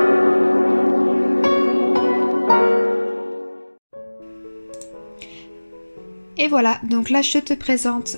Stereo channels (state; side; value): inverted; both; correlation -1.00